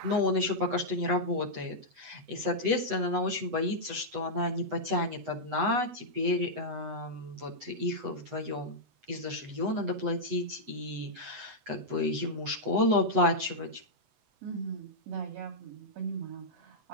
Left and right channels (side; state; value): left; late; 7.9 ms